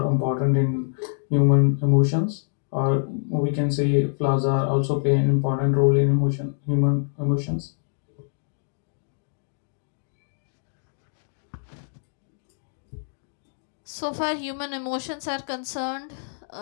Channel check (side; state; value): right; silent; digital silence